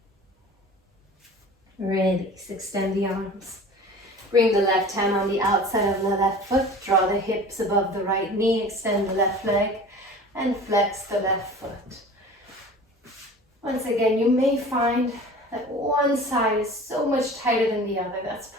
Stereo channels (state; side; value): normal; both; correlation 0.41